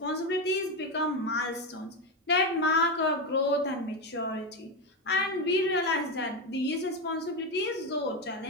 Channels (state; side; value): normal; both; correlation 0.12